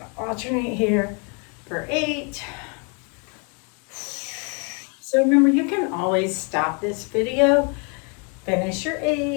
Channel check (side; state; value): right; quieter; 36.3 dB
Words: to alternate here for 8. So remember, you can always stop this video, finish your